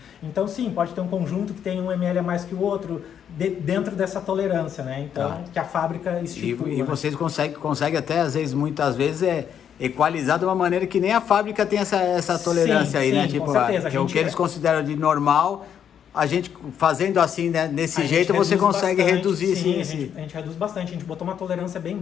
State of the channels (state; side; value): quieter; right; 8.7 dB